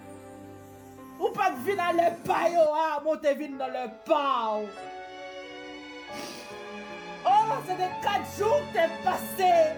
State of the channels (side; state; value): both; identical; correlation 1.00